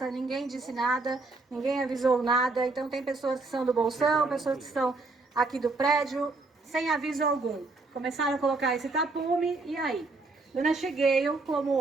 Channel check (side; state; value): left; quieter; 3.5 dB